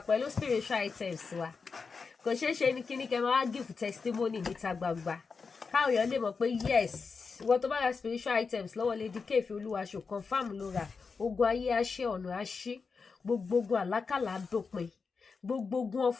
pẹ̀lú spiritual items wa kò ṣeé ṣe ní kíní kẹ́ máa wá give testimony níta gbangba káwọn èèyàn lè mọ̀ pé yes ìwọ tó bá ra spiritual items lọ́wọ́ Lady K Ìfẹ́ Olúwaṣò confam ló ra ogun ayé àṣẹ ọ̀nà àṣí gbogbo ogun àlákàlà àdópin gbogbo ogun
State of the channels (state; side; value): quieter; right; 5.0 dB